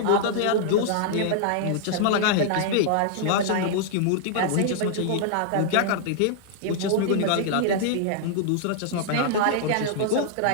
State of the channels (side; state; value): both; different; correlation -0.01